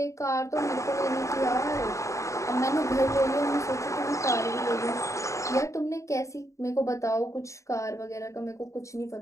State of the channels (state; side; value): late; right; 0.15 ms